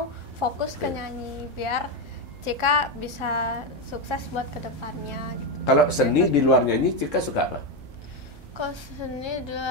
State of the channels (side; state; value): both; normal; correlation 0.09